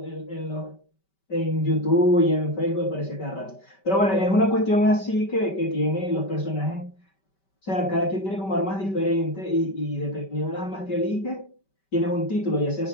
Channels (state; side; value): late; right; 5.2 ms